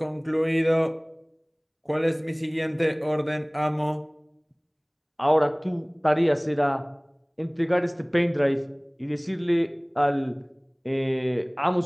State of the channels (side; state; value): both; identical; correlation 1.00